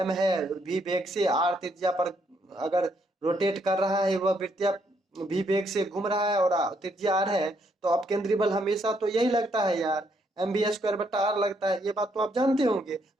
है, v वेग से r त्रिज्या पर अगर रोटेट कर रहा है, वह वृत्तीय v वेग से घूम रहा है और त्रिज्या r है, तो अपकेंद्री बल हमेशा तो यही लगता है यार, mv² बट्टा r लगता है। ये बात तो आप जानते होंगे,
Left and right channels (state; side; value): normal; both; correlation 0.73